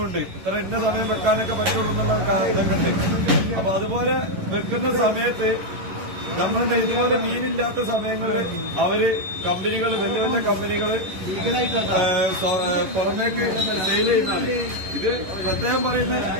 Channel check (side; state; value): left; late; 11 ms